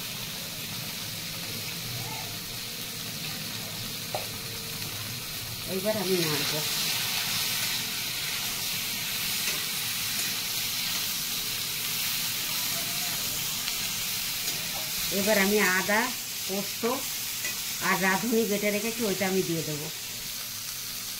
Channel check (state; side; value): identical; both; correlation 1.00